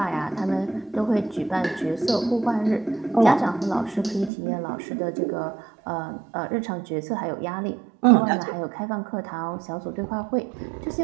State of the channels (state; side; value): drops out; left; at 4.3 s